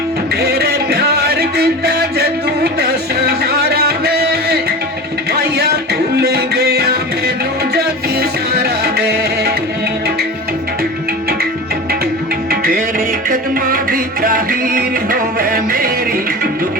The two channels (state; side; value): normal; both; correlation 0.31